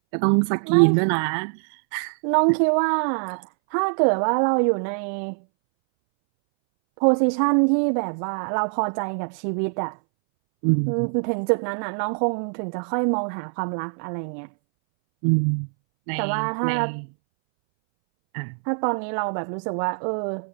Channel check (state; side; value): silent; left; 61 dB below the other